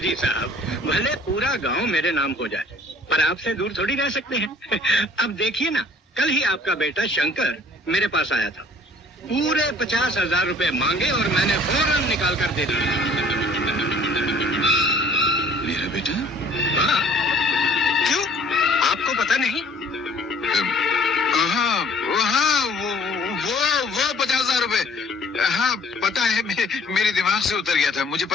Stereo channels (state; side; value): normal; both; correlation 0.54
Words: साहब, भले पूरा गांव मेरे नाम हो जाए, पर आपसे दूर थोड़ी रह सकते हैं। अब देखिए ना, कल ही आपका बेटा शंकर मेरे पास आया था। पूरे 50,000 रुपए मांगे और मैंने फौरन निकाल कर दे दिए। मेरा बेटा? हाँ, क्यों आपको पता नहीं? हाँ हाँ, वो 50,000 रुपए, हाँ पता है, मेरे दिमाग से उतर गया था। मुझे